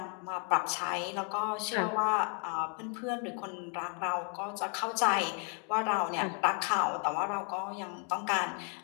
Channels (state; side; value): quieter; right; 39.8 dB